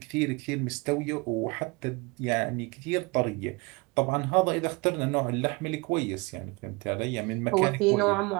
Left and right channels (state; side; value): quieter; left; 26.9 dB